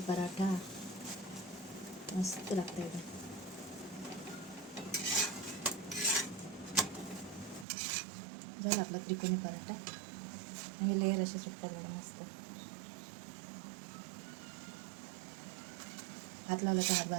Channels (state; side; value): drops out; left; at 7.7 s